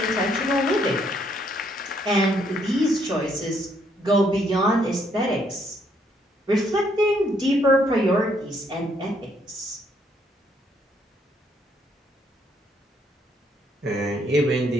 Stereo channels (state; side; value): normal; both; correlation 0.70